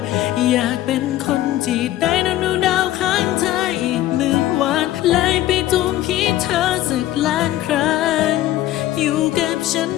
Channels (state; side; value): quieter; right; 14.2 dB